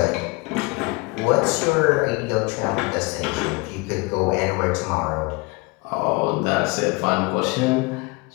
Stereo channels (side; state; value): right; quieter; 26.3 dB